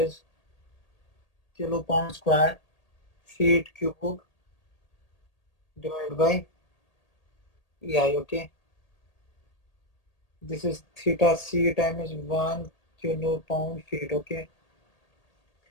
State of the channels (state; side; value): late; right; 1.8 ms